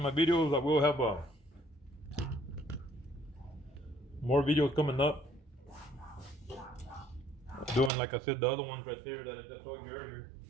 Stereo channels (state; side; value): drops out; left; at 7.9 s